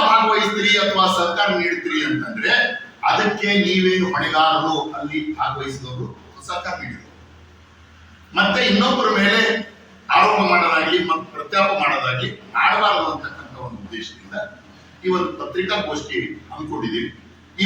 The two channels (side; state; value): both; identical; correlation 1.00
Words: ಭಾಗವಹಿಸ್ತೀರಿ ಅಥವಾ ಸರ್ಕಾರ ನೀಡ್ತೀರಿ ಅಂತಂದ್ರೆ ಅದಕ್ಕೆ ನೀವೇನು ಹೊಣೆಗಾರರು, ಅಲ್ಲಿ ಭಾಗವಹಿಸಿದವರು ಸಹಕಾರ ನೀಡಿದರು. ಮತ್ತೆ ಇನ್ನೊಬ್ಬರ ಮೇಲೆ ಆರೋಪ ಮಾಡೋದಾಗ್ಲಿ ಮತ್ತು ಪ್ರತ್ಯಾಪ ಮಾಡೋದಾಗ್ಲಿ ಮಾಡಬಾರದು ಅಂತಕ್ಕಂಥ ಒಂದು ಉದ್ದೇಶದಿಂದ ಈ ಒಂದು ಪತ್ರಿಕಾಗೋಷ್ಠಿ ಹಮ್ಮಿಕೊಂಡಿದ್ದೀವಿ. ಈ